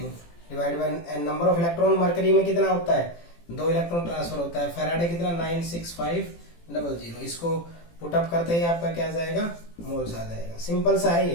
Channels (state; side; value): late; right; 18 ms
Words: divide by number of electron, mercury में कितना होता है 2 इलेक्ट्रॉन ट्रांसफर होता है, फैराडे कितना 96500, इसको पुटअप करते ही आपका क्या आ जाएगा मोल्स आ जाएगा। सिंपल सा है